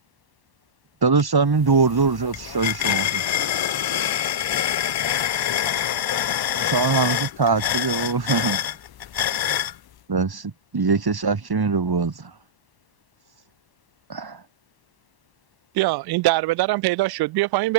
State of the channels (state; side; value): late; left; 1.1 ms